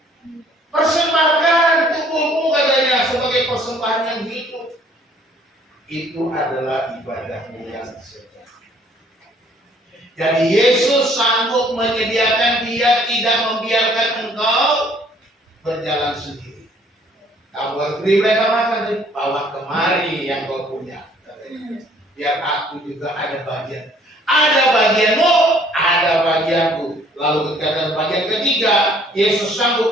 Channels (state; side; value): normal; both; correlation 0.59